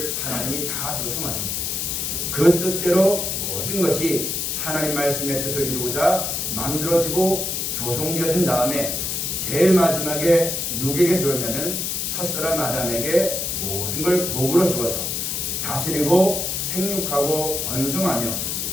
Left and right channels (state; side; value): noise; left; hiss, 1 dB below the sound